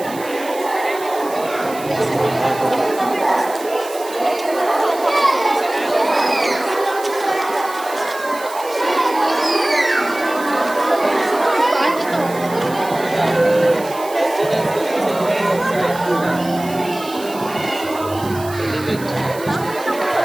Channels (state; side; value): noise; right; hiss, 16 dB below the sound